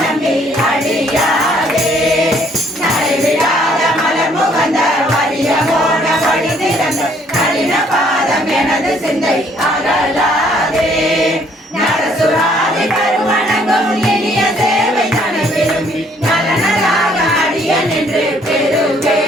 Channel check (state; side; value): normal; both; correlation 0.64